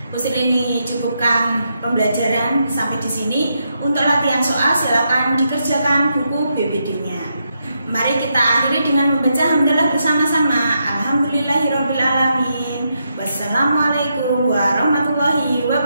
Usrini cukupkan pembelajaran sampai di sini. Untuk latihan soal silakan dikerjakan buku BBD-nya. Mari kita akhiri dengan membaca hamdalah bersama-sama. Alhamdulillahirobbilalamin. Wassalamualaikum warahmatullahi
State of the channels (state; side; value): inverted; both; correlation -0.82